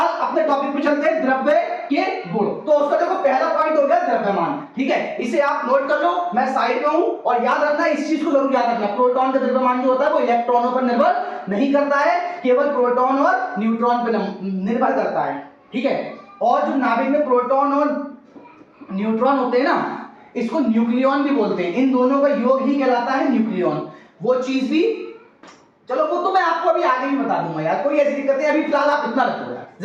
अपने टॉपिक पे चलते हैं, द्रव्य के गुण। तो उसका देखो पहला पॉइंट हो गया द्रव्यमान, ठीक है, इसे आप नोट कर लो, मैं साइड में हूं। और याद रखना, इस चीज को जरूर याद रखना, प्रोटॉन का द्रव्यमान जो होता है वो इलेक्ट्रॉनों पर निर्भर नहीं करता है, केवल प्रोटॉन और न्यूट्रॉन पर निर्भर करता है, ठीक है। और जो नाभिक में प्रोटॉन और न्यूट्रॉन होते हैं ना, इसको न्यूक्लियॉन भी बोलते हैं, इन दोनों का योग ही कहलाता है न्यूक्लियॉन। वो चीज भी, चलो वो तो मैं आपको अभी आगे भी बता दूंगा यार, कोई ऐसी दिक्कत है, अभी फिलहाल आप इतना रखो यार,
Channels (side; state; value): both; identical; correlation 1.00